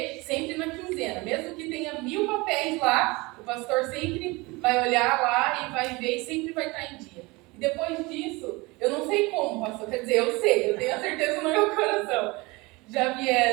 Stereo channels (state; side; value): quieter; left; 24.2 dB